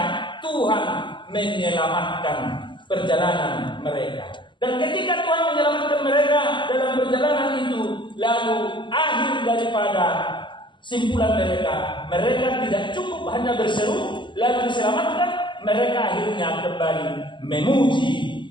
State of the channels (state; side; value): late; right; 0.23 ms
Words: Tuhan menyelamatkan perjalanan mereka. Dan ketika Tuhan menyelamatkan mereka dalam perjalanan itu, lalu akhir daripada simpulan mereka tidak cukup hanya berseru lalu diselamatkan, mereka akhirnya kembali